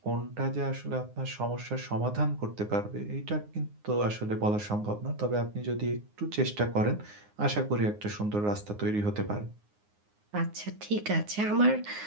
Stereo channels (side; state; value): left; late; 9.6 ms